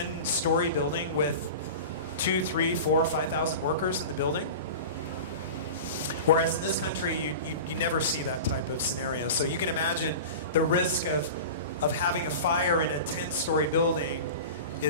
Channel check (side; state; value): both; inverted; correlation -0.32